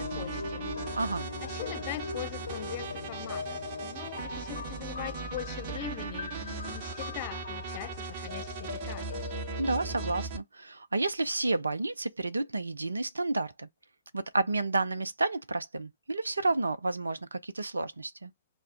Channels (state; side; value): inverted; both; correlation -0.74